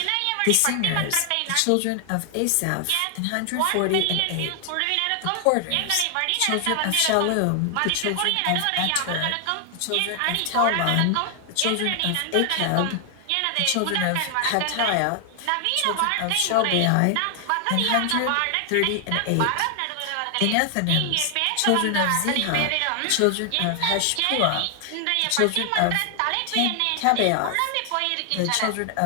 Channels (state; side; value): different; both; correlation 0.00